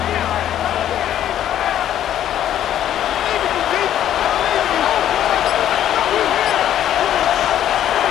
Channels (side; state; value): right; quieter; 11.2 dB